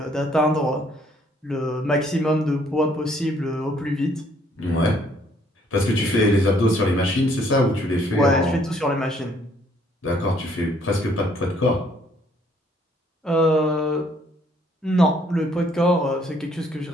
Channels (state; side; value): normal; both; correlation 0.64